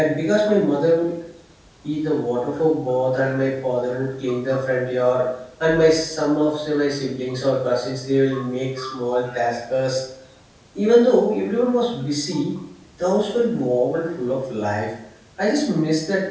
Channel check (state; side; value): identical; both; correlation 1.00